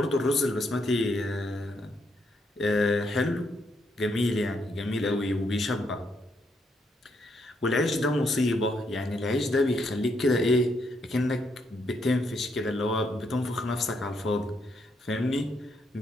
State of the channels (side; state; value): both; normal; correlation 0.76